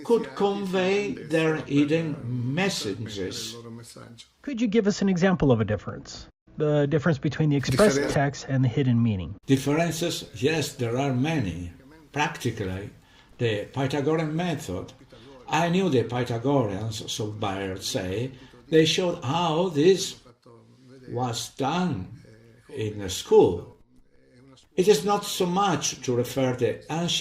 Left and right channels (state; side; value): identical; both; correlation 1.00